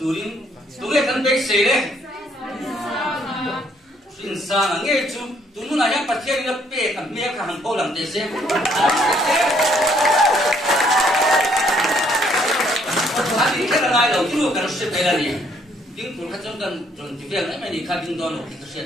turin tuge kan bei se le sin sa na nge chu tunu na ya pathian na pe kan me ka han ko lam te se ani ka na ngai lo chu kan se pe la ni tiếng phun khát trong gần rồi thì việc ấy mày đi khai kinh đo nó thì sẽ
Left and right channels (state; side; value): normal; both; correlation 0.67